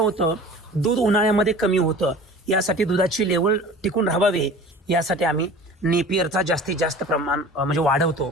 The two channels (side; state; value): both; normal; correlation 0.41